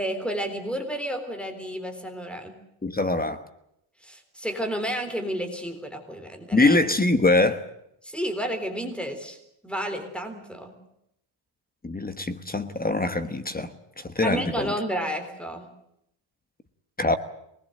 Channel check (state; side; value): normal; both; correlation 0.47